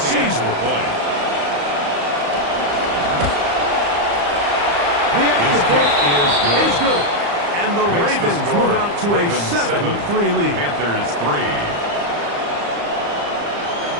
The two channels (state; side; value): late; left; 35 ms